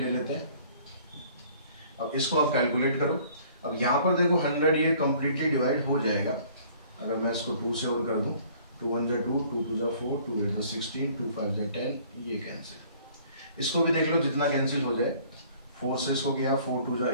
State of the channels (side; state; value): both; inverted; correlation -0.55